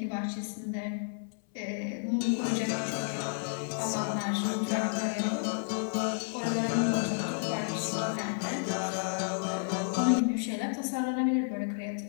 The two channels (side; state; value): right; silent; 57 dB below the other